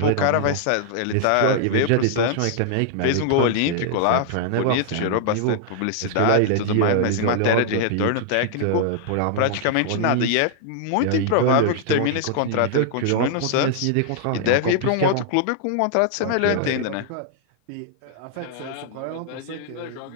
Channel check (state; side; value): different; both; correlation -0.01